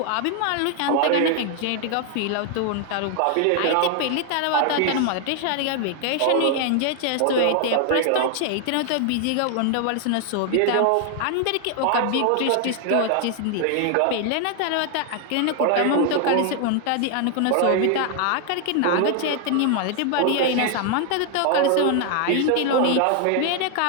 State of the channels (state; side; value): different; both; correlation 0.00